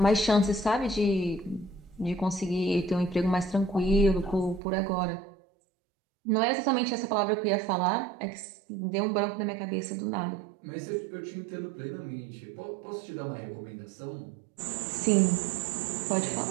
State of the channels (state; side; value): drops out; left; at 4.6 s